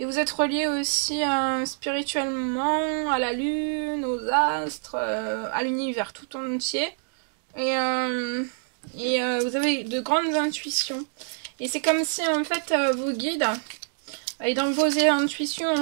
Et vous êtes reliés aussi spirituellement à la lune, aux astres, à l'univers tout entier. Et vous avez de grandes intuitions. Et c'est comme si en fait vos guides, et dans vos intuitions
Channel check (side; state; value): left; silent; 59 dB below the other